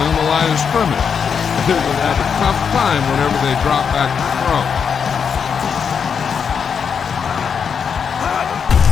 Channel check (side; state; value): right; quieter; 6.7 dB